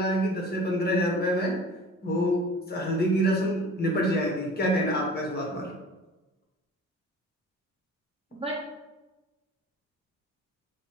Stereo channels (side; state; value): both; normal; correlation 0.43